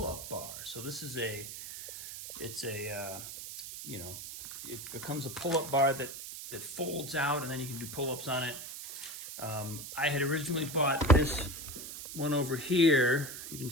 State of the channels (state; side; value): noise; right; hiss, 10 dB below the sound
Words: bar. So this is it becomes a pull-up bar that folds out and then you can do pull-ups on it. I had originally bought this one over here, you can